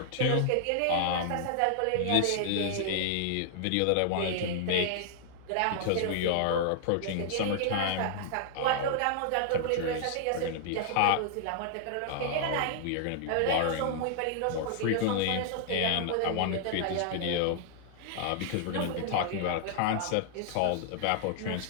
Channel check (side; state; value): both; different; correlation -0.01